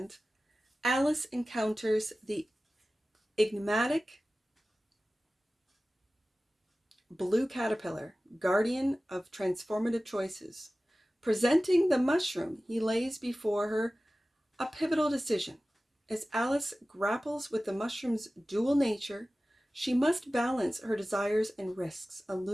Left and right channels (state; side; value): normal; both; correlation 0.96